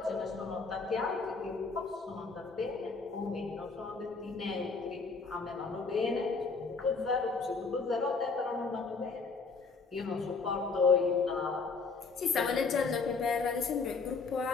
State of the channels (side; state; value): right; quieter; 4.5 dB